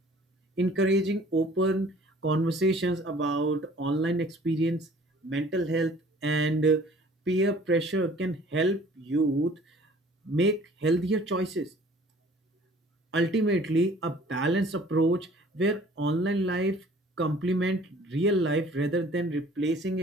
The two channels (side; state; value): both; normal; correlation 0.52